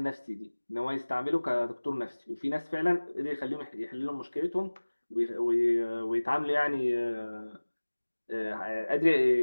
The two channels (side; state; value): both; inverted; correlation -1.00